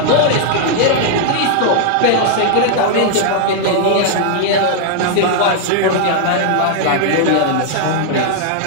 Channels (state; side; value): different; both; correlation 0.00